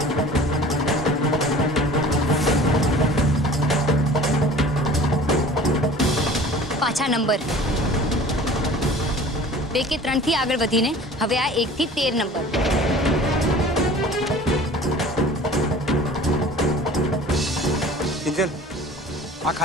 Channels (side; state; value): both; normal; correlation 0.44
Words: પાછા નંબર 2 કે 3 થી આગળ વધીને હવે આ 1 થી 13 નંબર. કિંજલ, આ